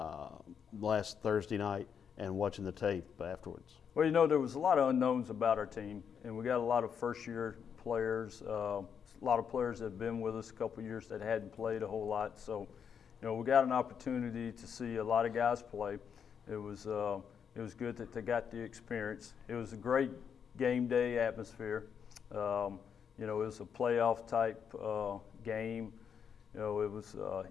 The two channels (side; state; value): right; quieter; 7.3 dB